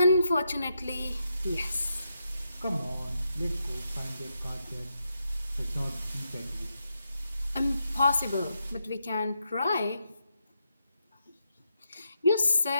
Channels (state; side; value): inverted; both; correlation -0.84